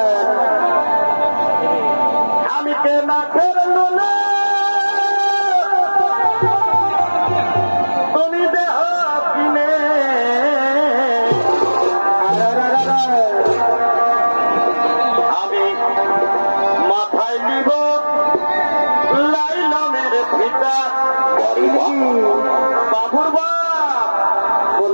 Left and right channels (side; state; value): both; inverted; correlation -1.00